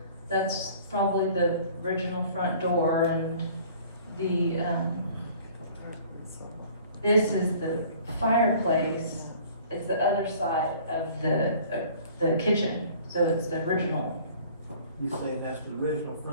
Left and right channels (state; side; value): inverted; both; correlation -0.51